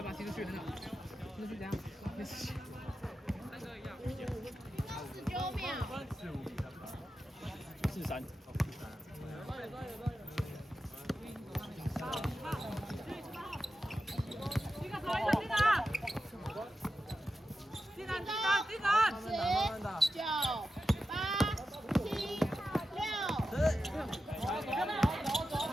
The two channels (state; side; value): normal; both; correlation 0.91